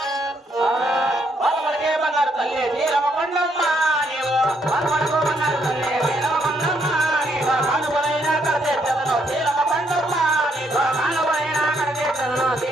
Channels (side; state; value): both; normal; correlation 0.73